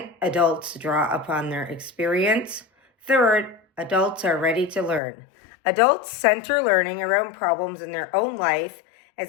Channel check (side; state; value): right; drops out; at 5.0 s